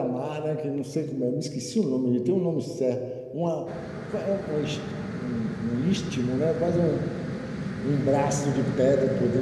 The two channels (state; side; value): identical; both; correlation 1.00